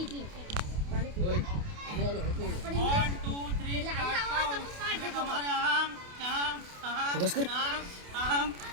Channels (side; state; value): left; late; 28 ms